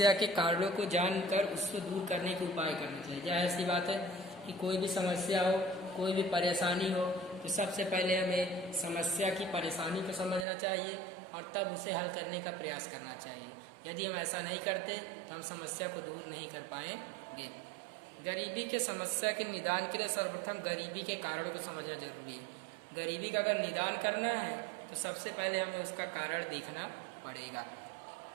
के कारणों को जानकर उसको दूर करने के उपाय करने चाहिए। क्या ऐसी बात है कि कोई भी समस्या हो, कोई भी परेशानी हो, तो सबसे पहले हमें समस्या की परेशानी को समझना चाहिए और तब उसे हल करने का प्रयास करना चाहिए। यदि हम ऐसा नहीं करते तो हम समस्या को दूर नहीं कर पाएंगे। गरीबी के समस्या के निदान के लिए सर्वप्रथम गरीबी के कारणों को समझना जरूरी है। गरीबी का अगर निदान करना है तो सबसे पहले हमें उसका कारण देखना पड़ेगा।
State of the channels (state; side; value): drops out; left; at 10.5 s